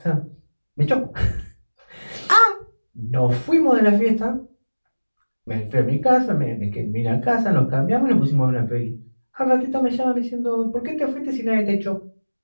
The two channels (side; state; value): both; inverted; correlation -1.00